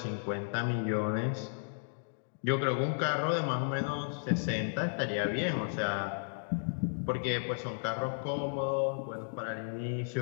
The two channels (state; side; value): silent; right; digital silence